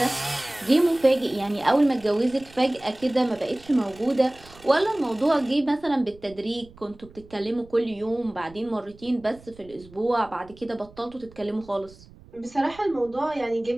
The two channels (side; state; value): right; noise; rumble, 23 dB below the sound